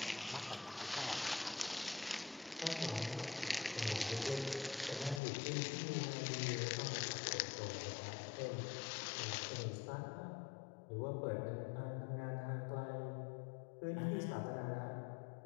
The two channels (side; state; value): right; drops out; at 5.2 s